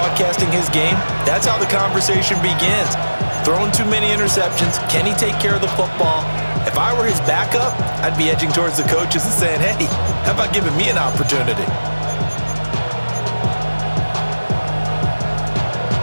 his game, that's how the conversation begins. Throwing too many interceptions, can he take care of the football? If I were his backup, I'd be edging towards the coaches and saying, hey, how about giving me an opportunity?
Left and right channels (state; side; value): inverted; both; correlation -1.00